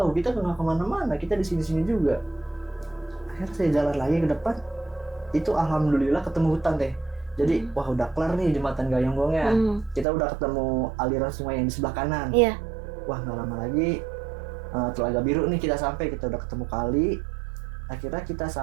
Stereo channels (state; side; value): drops out; left; at 10.1 s